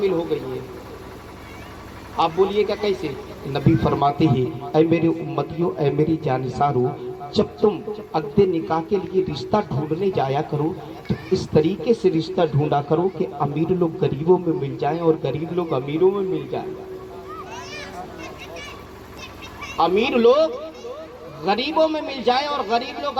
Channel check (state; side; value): identical; both; correlation 1.00